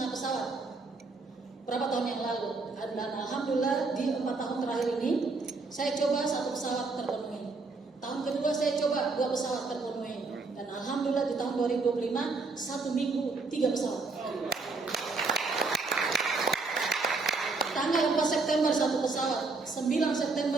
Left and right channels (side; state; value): left; quieter; 3.9 dB